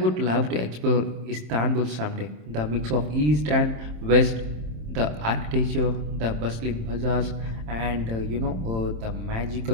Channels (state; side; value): late; left; 27 ms